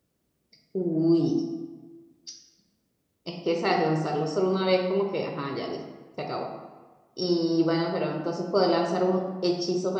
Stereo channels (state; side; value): identical; both; correlation 1.00